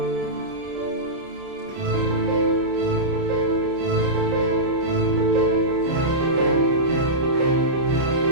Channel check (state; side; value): late; left; 30 ms